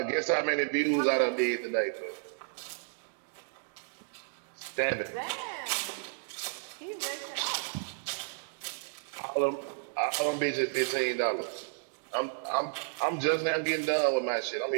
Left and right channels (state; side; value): silent; left; digital silence